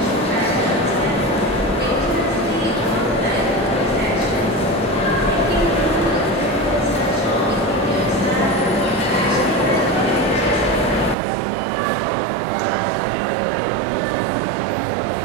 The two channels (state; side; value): drops out; left; at 11.2 s